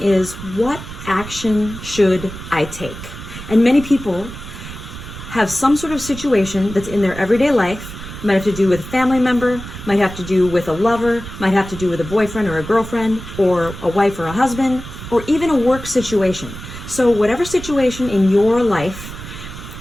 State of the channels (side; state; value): right; noise; rumble, 12 dB below the sound